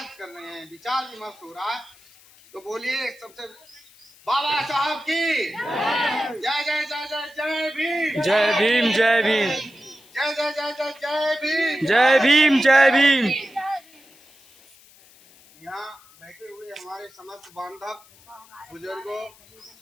कर रहे हैं, विचार विमर्श हो रहा है। तो बोलिए सबसे बाबा साहब की जय जय जय जय जय भीम, जय भीम, जय भीम, जय जय जय जय जय भीम, जय भीम, जय भीम। यहाँ बैठे हुए हमारे समस्त बांधव, बुजुर्गों,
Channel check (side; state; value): left; noise; hiss, 26 dB below the sound